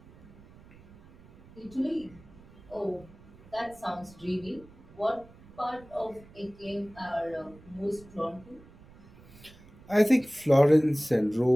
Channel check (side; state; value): right; noise; rumble, 23 dB below the sound